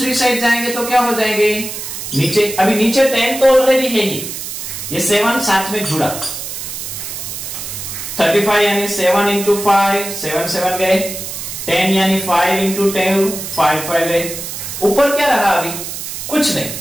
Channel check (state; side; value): noise; right; hiss, 7 dB below the sound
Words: साइड जाएंगे तो क्या हो जाएंगे, नीचे, अभी नीचे 10 तो ऑलरेडी है ही, ये 7 साथ में जुड़ा, 35 यानी 7 इंटू 5, 7 7 गए, 10 यानी 5 इंटू 10, 5 5 गए। ऊपर क्या रहा, अभी